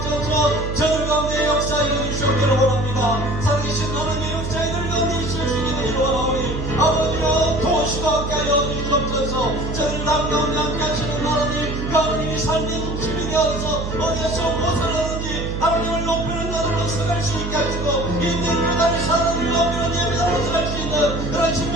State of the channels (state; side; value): noise; right; hum, 5 dB below the sound